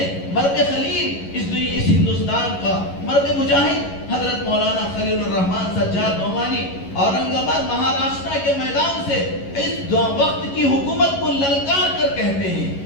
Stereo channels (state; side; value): late; right; 11 ms